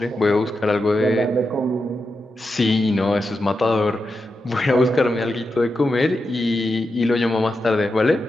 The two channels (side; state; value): both; normal; correlation 0.88